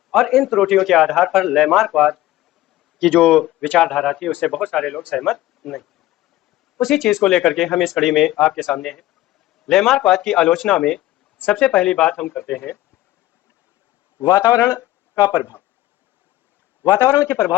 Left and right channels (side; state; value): right; quieter; 15.9 dB